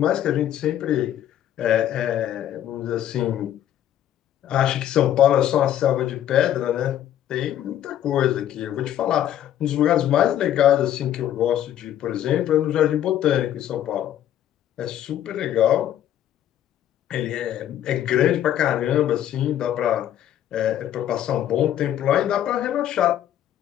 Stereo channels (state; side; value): quieter; right; 11.3 dB